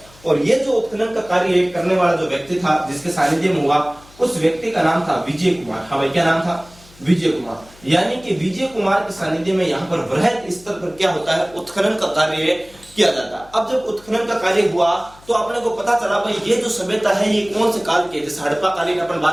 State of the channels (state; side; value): noise; left; hum, 25 dB below the sound